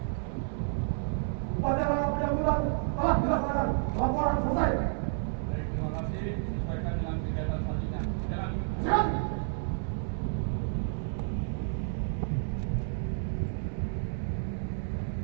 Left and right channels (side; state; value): left; silent; 57 dB below the other